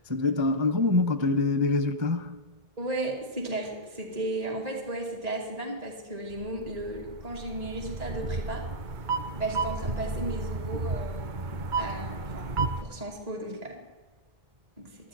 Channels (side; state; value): left; late; 1.8 ms